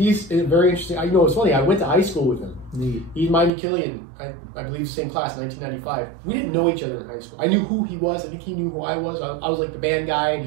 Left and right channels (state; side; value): drops out; left; at 3.5 s